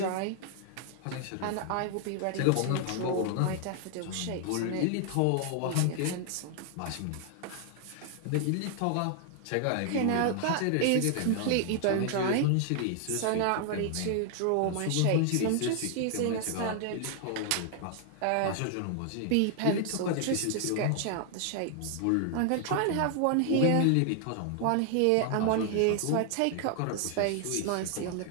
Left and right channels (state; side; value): different; both; correlation 0.00